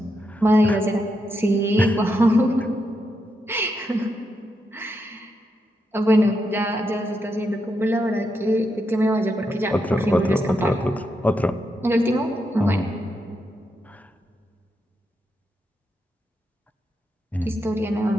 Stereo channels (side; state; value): both; normal; correlation 0.83